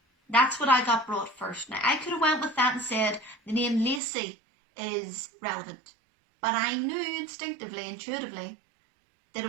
that's what I got brought first. Now, I could have went with that and said the name Lacey is relevant. But I knew instinctively, intuitively, that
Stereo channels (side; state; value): left; drops out; at 4.0 s